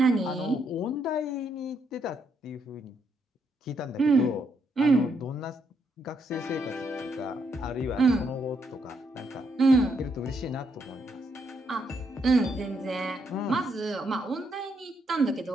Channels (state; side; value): normal; both; correlation 0.76